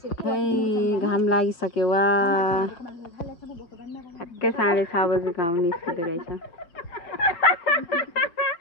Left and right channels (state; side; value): late; right; 5.6 ms